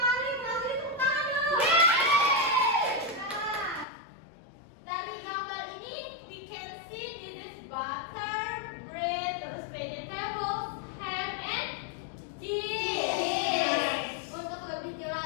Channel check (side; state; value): right; drops out; at 3.9 s